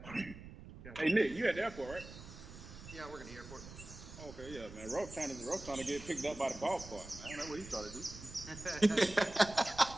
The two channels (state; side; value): noise; right; rumble, 14 dB below the sound